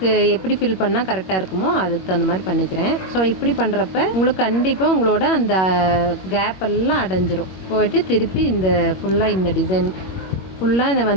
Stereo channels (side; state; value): right; late; 21 ms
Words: எப்படி ஃபில் பண்ணால் கரெக்டாக இருக்குமோ அதுக்கு தகுந்த மாதிரி பண்ணிக்கிறேன். ஸோ இப்படி பண்ணுறப்ப உங்களுக்கு கண்டிப்பாக உங்களோட அந்த கேப் எல்லாம் அடைஞ்சிரும். போயிட்டு திருப்பி இந்த ஃபுல்லாக இந்த டிசைன் ஃபுல்லாக இதை